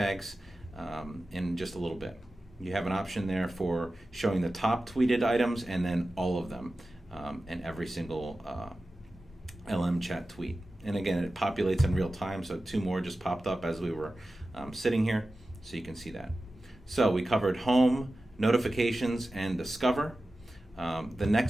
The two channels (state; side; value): normal; both; correlation 0.94